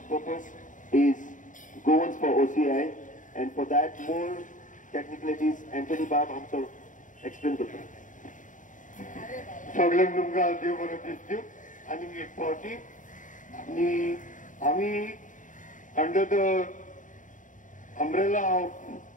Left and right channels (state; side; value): late; right; 0.37 ms